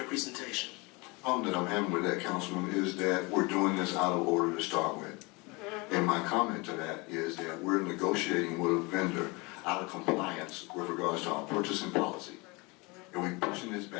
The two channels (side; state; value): right; quieter; 26.5 dB